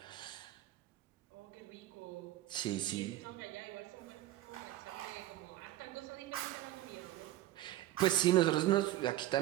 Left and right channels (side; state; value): left; quieter; 14.3 dB